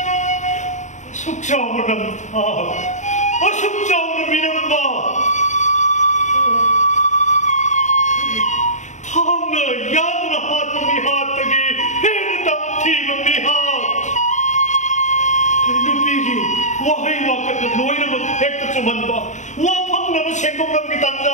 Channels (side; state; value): right; late; 0.35 ms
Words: ꯑꯁꯨꯛ ꯆꯥꯎꯕ ꯅꯝꯊꯥ ꯑꯁꯨꯛ ꯆꯥꯎꯅ ꯃꯤꯅꯝꯕ ꯊꯥꯡꯅ ꯌꯥꯗꯨꯅ ꯍꯥꯠꯄ ꯃꯤꯍꯥꯠꯇꯒꯤ ꯍꯦꯟꯅ ꯇꯝꯊꯤꯕ ꯃꯤꯍꯥꯠ ꯅꯨꯄꯤꯒꯤ ꯋꯥꯍꯩ ꯋꯥꯀꯠꯅ ꯂꯣꯏꯅꯃꯛ ꯍꯦꯛꯇ ꯆꯨꯝꯍꯟꯕ ꯋꯥꯐꯪꯅꯕ ꯁꯦꯡꯗꯣꯛꯅꯕꯒꯤ